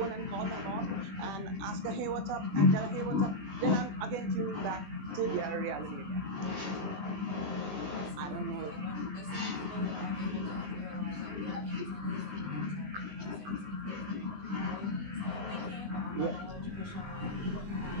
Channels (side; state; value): left; late; 20 ms